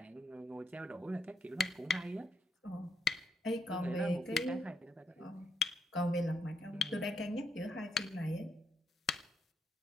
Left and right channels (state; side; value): normal; both; correlation 0.78